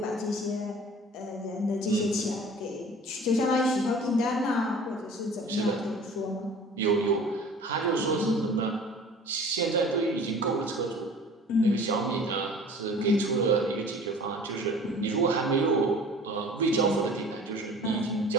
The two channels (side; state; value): both; normal; correlation 0.45